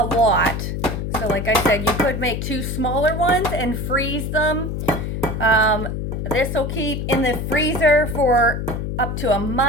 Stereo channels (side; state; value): left; noise; hum, 3 dB below the sound